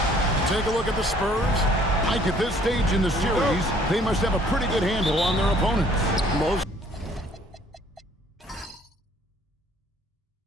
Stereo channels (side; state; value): both; normal; correlation 0.59